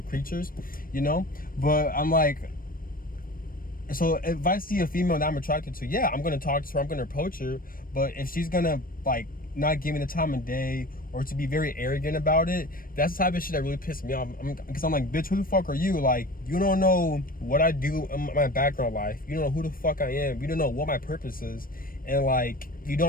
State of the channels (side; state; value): right; late; 0.41 ms